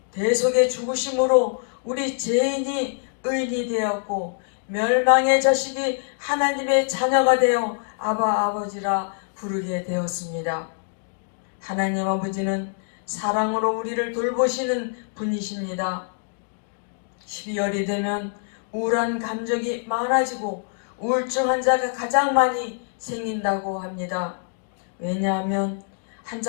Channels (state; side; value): silent; right; 62 dB below the other